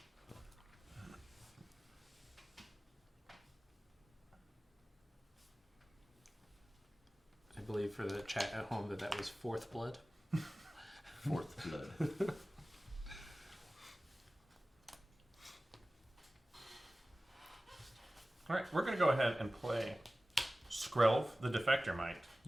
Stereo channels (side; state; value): both; normal; correlation 0.97